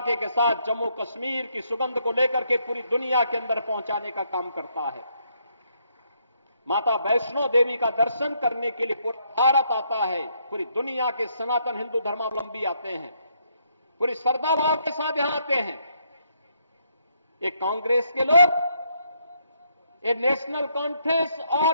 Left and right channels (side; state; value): both; inverted; correlation -0.73